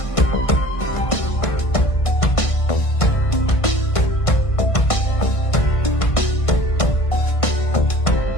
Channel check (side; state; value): right; late; 1.5 ms